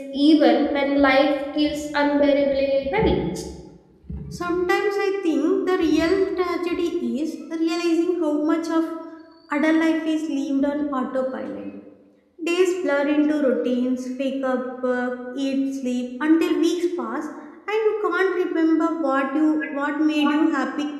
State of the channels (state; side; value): identical; both; correlation 1.00